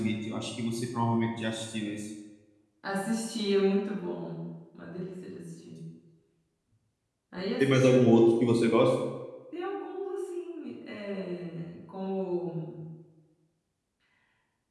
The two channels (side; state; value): both; identical; correlation 1.00